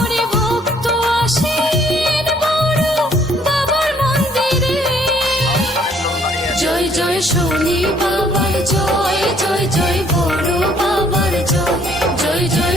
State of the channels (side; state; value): both; normal; correlation 0.63